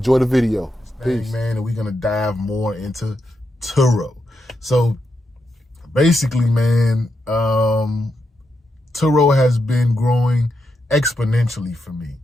the video. Peace. Man, and we're gonna dive more into TURO. So basically, man, TURO has been growing exponentially for me.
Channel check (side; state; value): both; normal; correlation 0.84